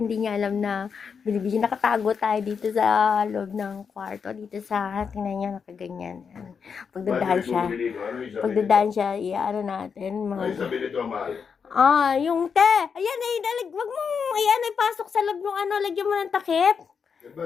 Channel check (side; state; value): right; quieter; 6.2 dB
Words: niya alam na binibidyo. Nakatago tayo dito sa loob ng kwarto. Dito sa, tingnan niya, nakaganyan. Pagdadaan siya, ano natin. Ay, sabi nito, mahal. Yung te. Ayan wag mong, pasok sa loob yung lagyan mo ng takip.